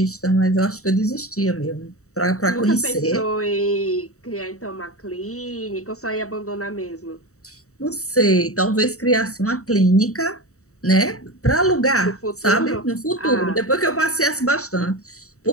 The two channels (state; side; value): late; right; 0.65 ms